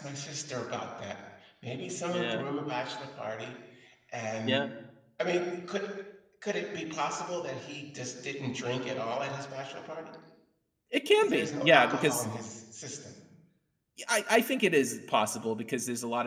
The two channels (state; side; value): identical; both; correlation 1.00